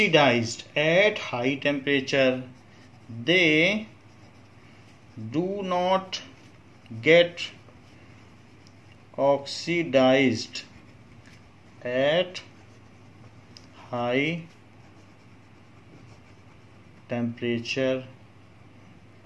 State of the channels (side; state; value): both; identical; correlation 1.00